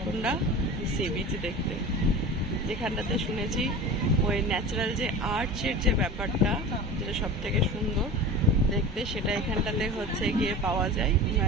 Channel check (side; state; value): both; normal; correlation 0.33